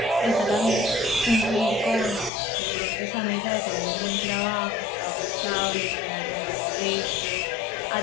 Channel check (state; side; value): drops out; right; at 2.3 s